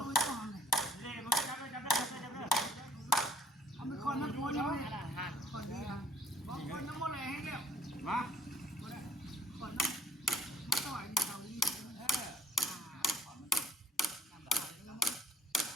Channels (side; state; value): both; normal; correlation 0.57